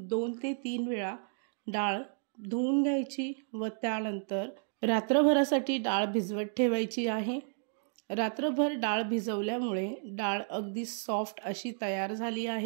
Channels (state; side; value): silent; left; digital silence